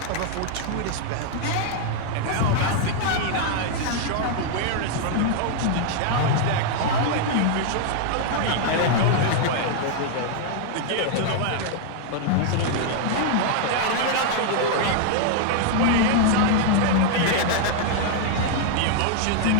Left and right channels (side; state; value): both; different; correlation -0.01